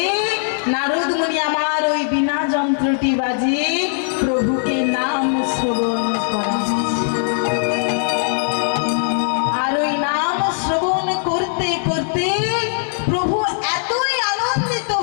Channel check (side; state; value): right; silent; digital silence